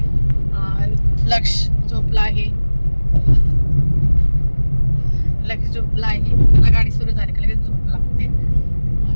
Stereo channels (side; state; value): both; inverted; correlation -1.00